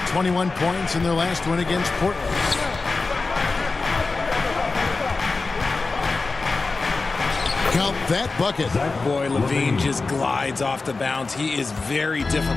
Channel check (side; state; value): right; quieter; 3.9 dB